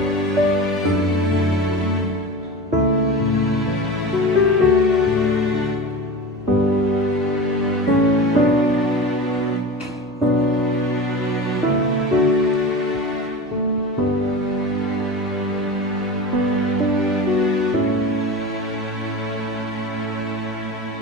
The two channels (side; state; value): both; normal; correlation 0.30